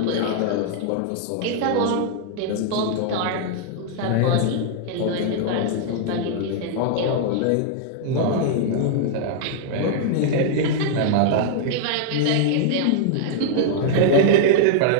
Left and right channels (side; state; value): both; different; correlation -0.01